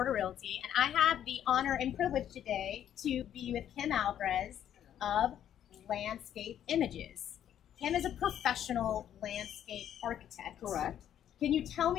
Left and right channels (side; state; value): right; quieter; 10.4 dB